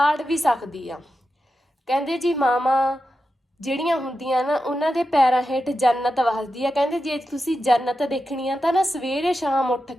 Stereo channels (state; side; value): normal; both; correlation 0.90